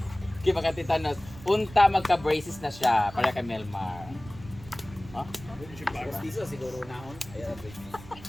Kaya makatitanos, unta magka-braces na siya para kay Melmar. Huh? Siguro naon.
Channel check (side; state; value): right; noise; rumble, 17 dB below the sound